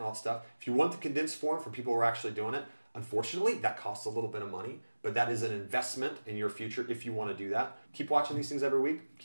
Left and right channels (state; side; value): inverted; both; correlation -1.00